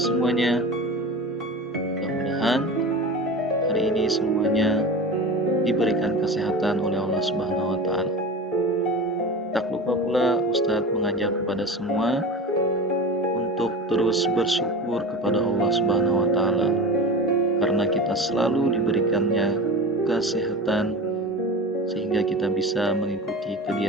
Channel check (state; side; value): normal; both; correlation 0.31